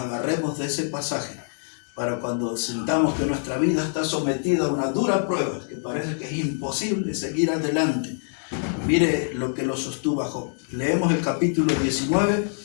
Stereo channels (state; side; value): silent; right; digital silence